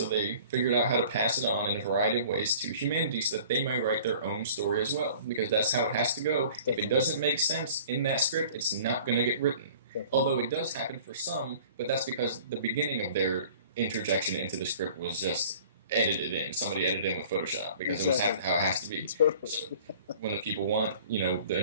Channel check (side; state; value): both; inverted; correlation -0.48